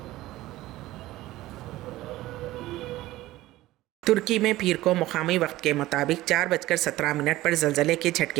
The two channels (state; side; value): quieter; left; 16.7 dB